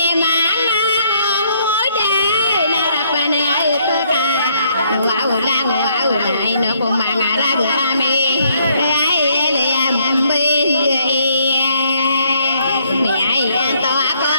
manga moda na rapana ai to ka wow ai no ko manga ra ga me ai ale ambe mi ai to ko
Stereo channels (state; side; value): inverted; both; correlation -0.69